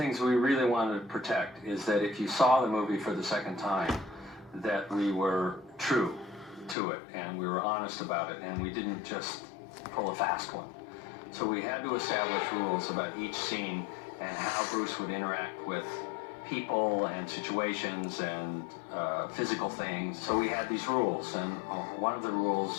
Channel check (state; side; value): drops out; right; at 6.8 s